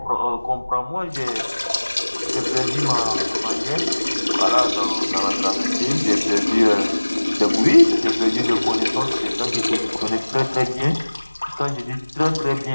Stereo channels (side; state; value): both; inverted; correlation -1.00